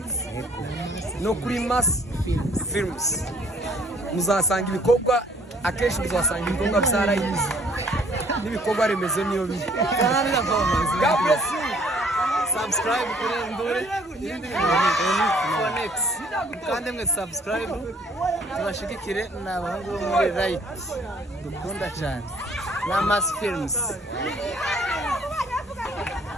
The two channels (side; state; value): both; normal; correlation 0.60